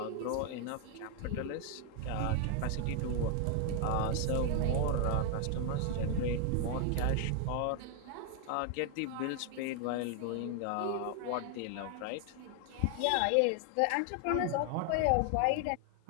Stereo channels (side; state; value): both; different; correlation 0.00